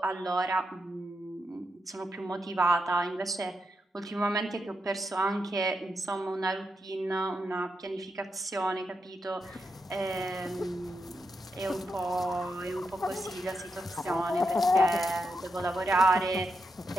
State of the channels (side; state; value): both; normal; correlation 0.85